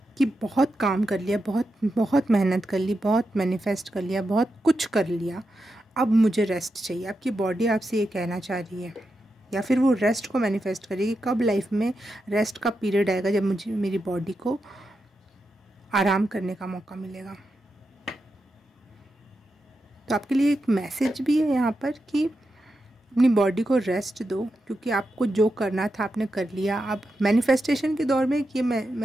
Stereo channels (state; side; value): normal; both; correlation 0.87